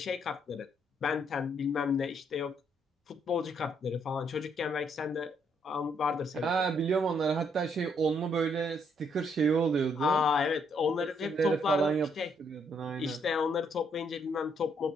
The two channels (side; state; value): both; normal; correlation 0.71